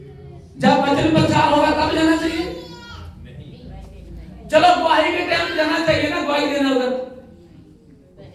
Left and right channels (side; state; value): both; identical; correlation 1.00